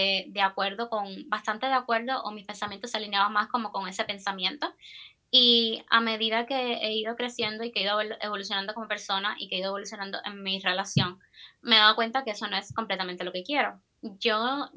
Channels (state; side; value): identical; both; correlation 1.00